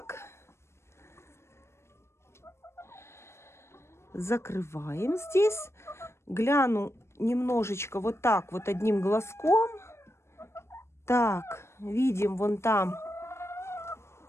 Закрываем здесь. Гляну немножечко вот так вот одним глазком. Так, видим, вон там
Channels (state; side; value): late; right; 0.13 ms